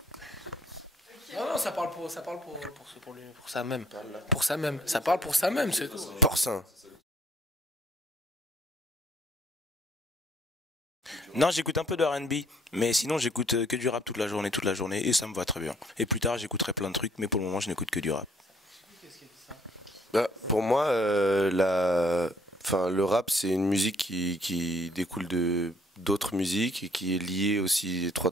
Non, ça parle pour ça même. Pour ça même. Ça parle pour ça même, c'est tout. Porcin. Non, j'écoute un peu de R&B, mais sinon j'écoute que du rap toute la journée, et ça me va très bien. Et plus tard, j'écouterai plein de trucs, mais pour le moment, je n'écoute que du rap. Bah, pour moi, le rap, c'est une musique qui découle d'autres musiques et qui est liée aussi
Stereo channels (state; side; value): normal; both; correlation 0.63